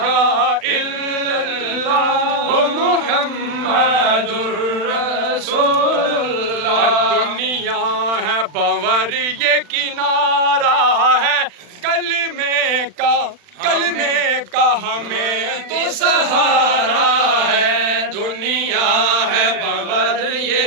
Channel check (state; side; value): late; left; 40 ms